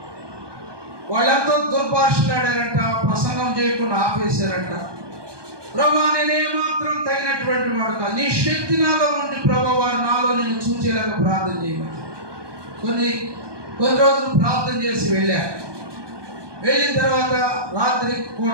వాళ్ళంతా దుర్భాషలాడారంట, ప్రసంగం చేయకుండా ఆపేశారంట. ప్రభువా నేనేమాత్రం తగినటువంటి వాడు కాదు, నీ శక్తి నాలో ఉండి ప్రభువా వారు నాలో నేను చూచేలాగా ప్రార్థన చేయమని కొన్ని రోజులు ప్రార్థన చేసి వెళ్ళిన తర్వాత రాత్రి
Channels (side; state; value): left; late; 1.2 ms